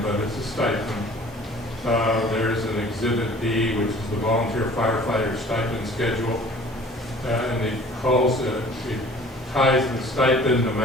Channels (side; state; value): both; normal; correlation 0.49